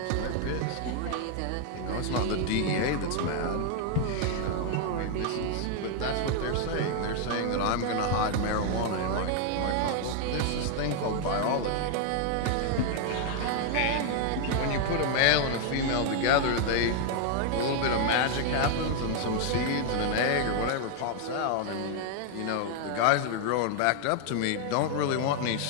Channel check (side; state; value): both; different; correlation 0.00